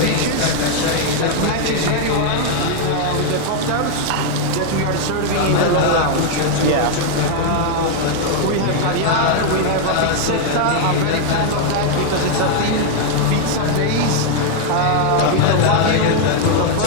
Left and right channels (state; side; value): different; both; correlation 0.00